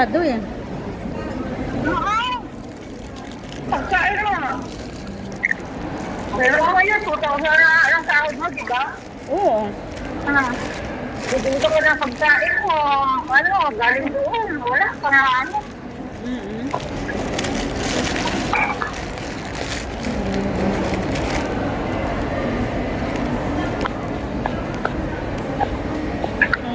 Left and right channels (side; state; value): both; identical; correlation 1.00